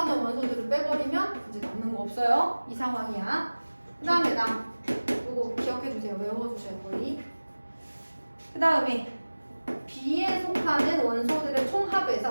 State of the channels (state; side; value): inverted; both; correlation -1.00